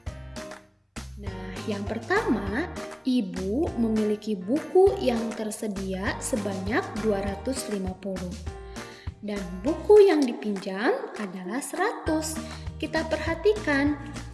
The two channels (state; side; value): identical; both; correlation 1.00